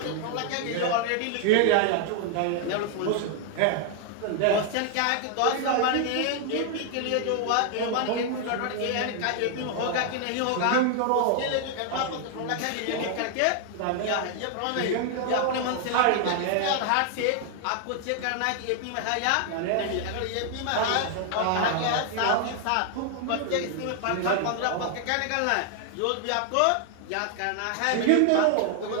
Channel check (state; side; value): different; both; correlation 0.00